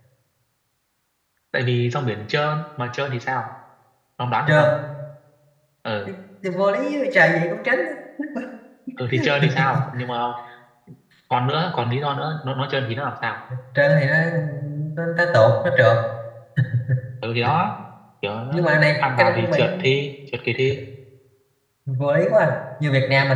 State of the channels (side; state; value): both; identical; correlation 1.00